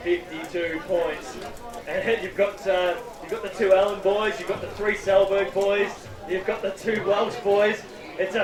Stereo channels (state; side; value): identical; both; correlation 1.00